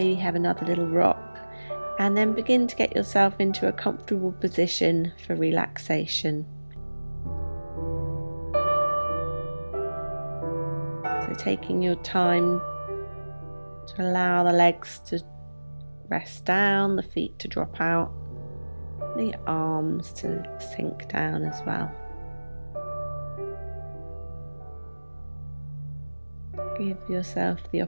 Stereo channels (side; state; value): both; inverted; correlation -1.00